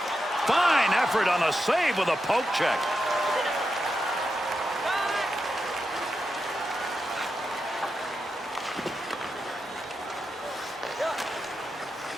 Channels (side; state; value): both; normal; correlation 0.87